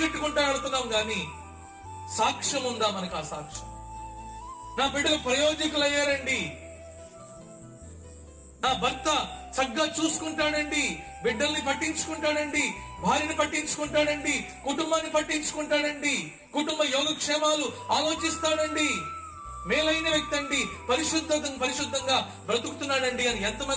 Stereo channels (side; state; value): both; identical; correlation 1.00